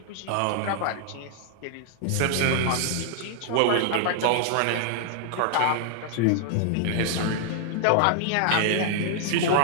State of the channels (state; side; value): different; both; correlation 0.00